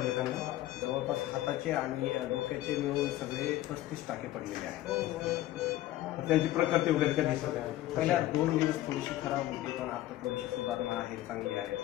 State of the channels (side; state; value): right; quieter; 15.0 dB